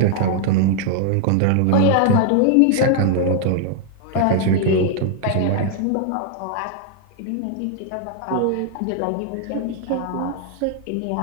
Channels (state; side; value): different; both; correlation 0.00